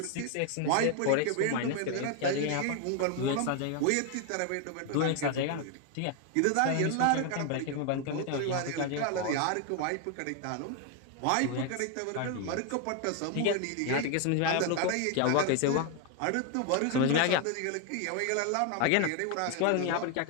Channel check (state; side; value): different; both; correlation 0.01